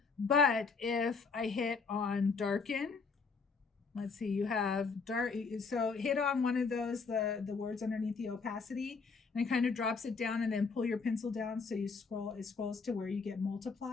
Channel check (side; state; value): right; quieter; 4.8 dB